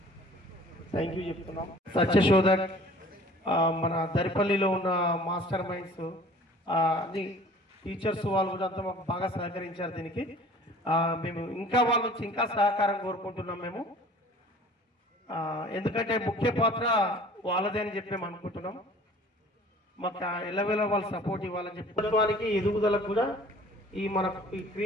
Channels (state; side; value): normal; both; correlation 0.49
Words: థ్యాంక్ యూ చెప్తున్నాం. సత్యశోధక్ మన దరిపల్లిలో ఉన్న మాస్టర్ మైండ్స్ అన్ని టీచర్స్ వాళ్ళు కూడా అంతా మాకు బాగా సహకరించారు. దీనికి మేము ఇంకా వాళ్ళ నుంచి ఇంకా సహకారం కోరుకుంటున్నాం. మేము ఎందుకంటే ముఖ్య పాత్ర వాళ్ళదే అని చెప్పి మేము అనుకుంటున్నాం. మాకు ఎల్లవేళ వాళ్ళు సపోర్ట్ ఇవ్వాలని చెప్పి ప్రభుత్వానికి ఎదుగుదలకు కూడా ఈ